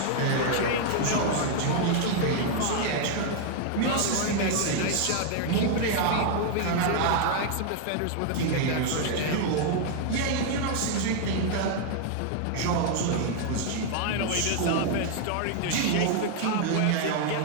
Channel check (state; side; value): different; both; correlation 0.00